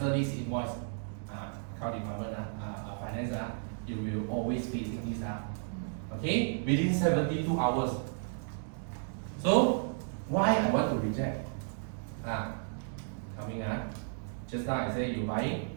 this invoice. Account department, finance, you will always facing this. Okay, within 72 hours. So why I want to reject? Coming just now I say you buying.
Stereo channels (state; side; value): silent; left; digital silence